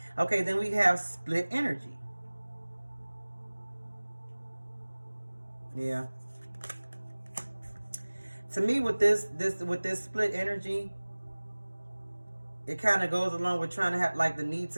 Okay, then we have split energy. Yeah. To me, with this split energy, it kind of goes along with trying to have like the need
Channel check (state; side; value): inverted; both; correlation -1.00